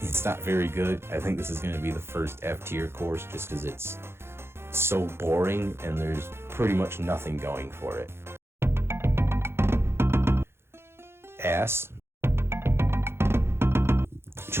not very good. I think this is going to be the first F tier course just because it's so boring and there's pretty much nothing going for it. Ass.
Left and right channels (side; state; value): left; late; 0.12 ms